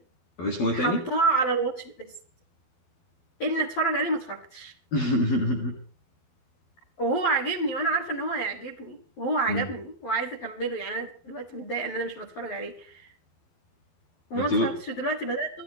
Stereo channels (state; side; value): late; right; 12 ms